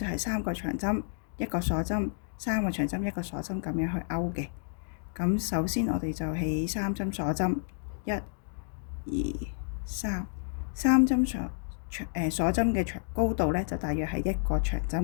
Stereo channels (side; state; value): right; silent; digital silence